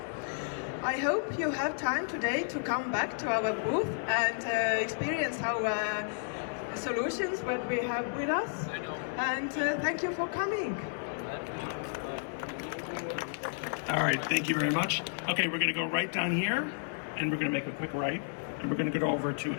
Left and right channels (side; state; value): right; silent; digital silence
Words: I hope you have time today to come back to our booth and experience our solutions, what we have with us. And thank you for coming. All right, thank you very much. Okay, we're going to go right down here, and we're going to make a quick right, and we're going to go over to